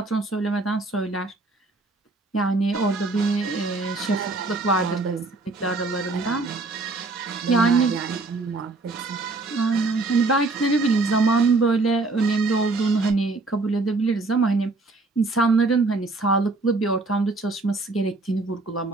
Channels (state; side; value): quieter; left; 3.4 dB